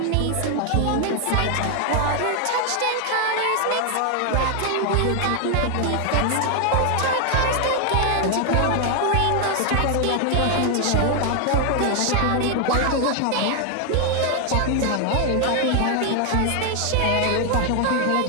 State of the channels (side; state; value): both; different; correlation 0.00